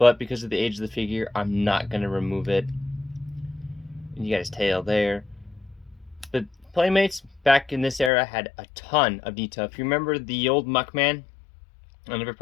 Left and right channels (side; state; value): right; drops out; at 8.1 s